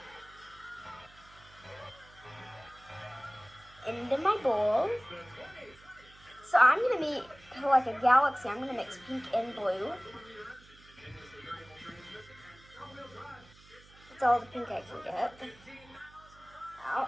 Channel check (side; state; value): right; noise; hum, 24 dB below the sound